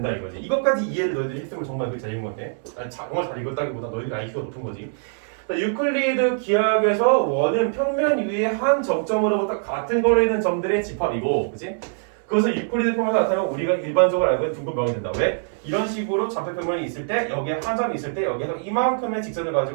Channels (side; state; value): left; silent; 63 dB below the other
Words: 이거지. 이것까지 이해를 너희들이 했으면 정말 그 잘 읽은 건데 정말 잘 읽었다기보다 너희들이 IQ가 높은 거지. 유클리드 기하학에서 원은 평면 위에 한 정점으로부터 같은 거리에 있는 점들의 집합이고, 그치? 그것을 유클리드 평면에서 나타내면 우리가 일반적으로 알고 있는 둥근 된다. 왜? 이런 식으로 좌표평면이 있을 때 여기에 한 점이 있을 때 여기에서 이만큼의 직선을